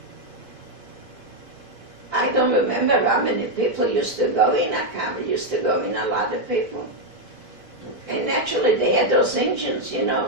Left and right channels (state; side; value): late; left; 4.6 ms